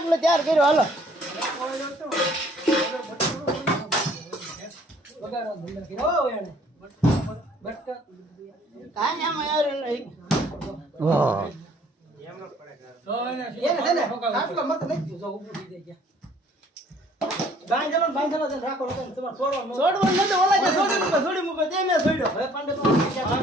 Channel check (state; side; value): normal; both; correlation 0.58